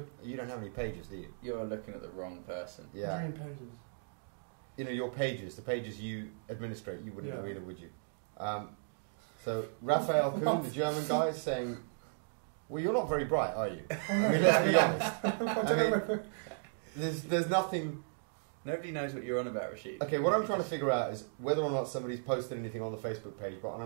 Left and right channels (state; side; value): silent; left; digital silence